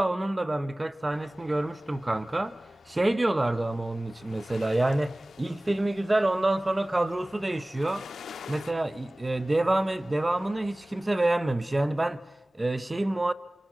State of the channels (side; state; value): both; normal; correlation 0.98